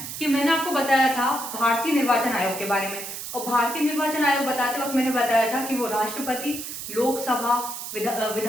कि मैंने आपको बताया था भारतीय निर्वाचन आयोग के बारे में, और भारतीय निर्वाचन आयोग बताते वक्त मैंने बताया था कि वो राष्ट्रपति, लोकसभा,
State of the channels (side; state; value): right; noise; hiss, 8 dB below the sound